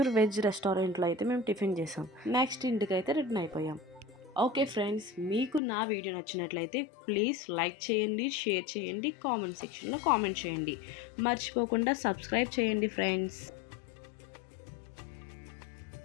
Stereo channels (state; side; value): drops out; right; at 5.6 s